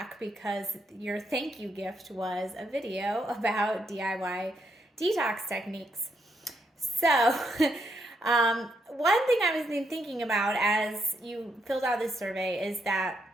because your thank you gift was a video about DIY detox techniques. So one thing I was thinking about as you filled out this survey is that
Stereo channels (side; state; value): both; normal; correlation 0.77